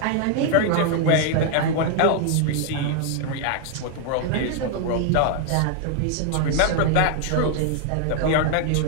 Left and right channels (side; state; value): both; different; correlation 0.00